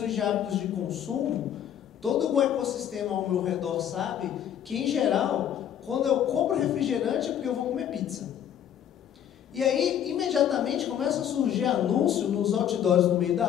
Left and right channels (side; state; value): right; quieter; 9.9 dB